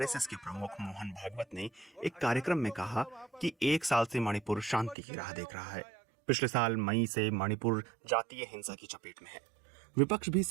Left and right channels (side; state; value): left; drops out; at 5.0 s